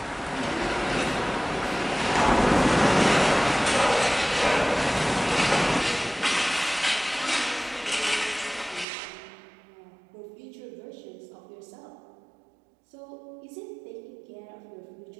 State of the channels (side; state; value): left; drops out; at 8.8 s